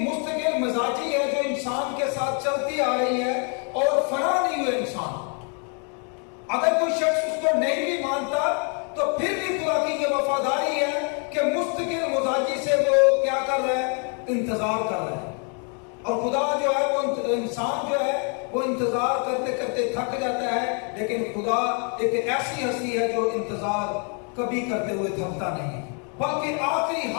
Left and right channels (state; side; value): quieter; right; 39.7 dB